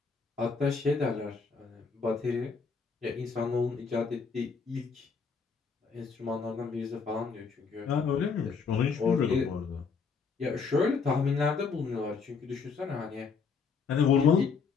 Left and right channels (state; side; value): quieter; right; 5.3 dB